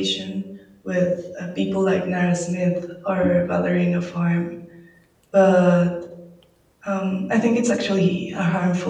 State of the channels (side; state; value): both; identical; correlation 1.00